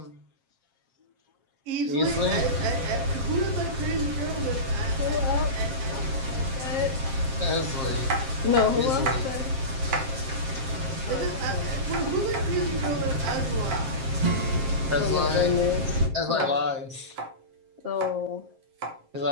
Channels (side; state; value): left; late; 7.5 ms